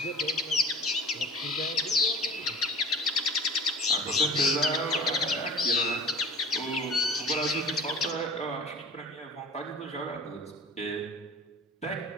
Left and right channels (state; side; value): normal; both; correlation 0.40